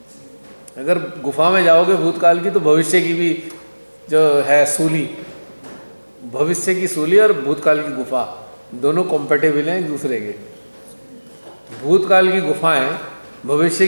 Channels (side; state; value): both; inverted; correlation -1.00